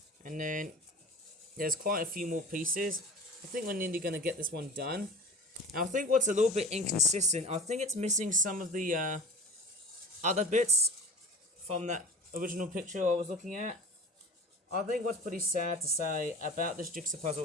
And then there's quite a few more pieces. I think we're nearly going to get this one done. Now, I think what's a little bit inconsistent, I think it's missing some of the other bits from that original picture I was looking at. I think what's pretty sad to say about this jigsaw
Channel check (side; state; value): both; normal; correlation 0.38